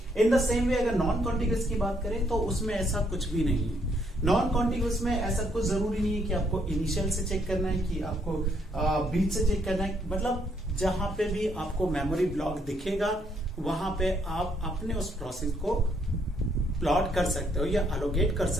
इन द सेम वे अगर नॉन कॉन्टिगुअस की बात करें तो उसमें ऐसा कुछ भी नहीं है। नॉन कॉन्टिगुअस में ऐसा कुछ जरूरी नहीं है कि आपको इनिशियल से चेक करना है, कि आपको बीच से चेक करना है। मतलब जहां पे भी आपको मेमोरी ब्लॉक दिखेगा वहां पे आप अपने उस प्रोसेस को प्लॉट कर सकते हो या अलोकेट कर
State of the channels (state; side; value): normal; both; correlation 0.71